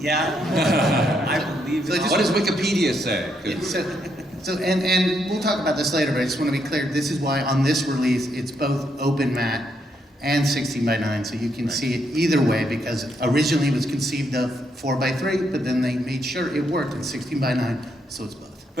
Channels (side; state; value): both; normal; correlation 0.76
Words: I believe So it. just- What does Wikipedia say? 'Cause- And we'll talk about this later, but I just want to be clear, this is why on this release, it's both open matte and 16:9, so you can see it either way, because originally it was conceived of 4:3, but then they made sure it worked in 16:9, so it's both.